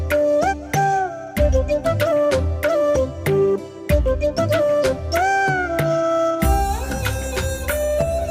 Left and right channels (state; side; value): identical; both; correlation 1.00